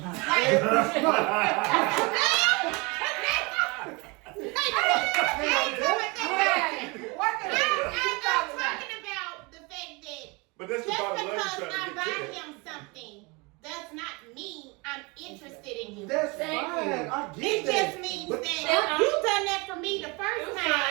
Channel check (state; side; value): quieter; left; 27.5 dB